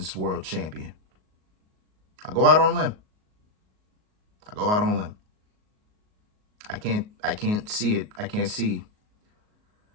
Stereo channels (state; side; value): late; left; 38 ms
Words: World Champion. I'll go out on a limb. I can't see it. I can see